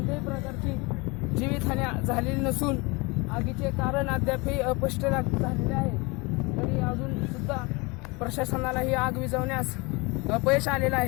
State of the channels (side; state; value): right; quieter; 26.6 dB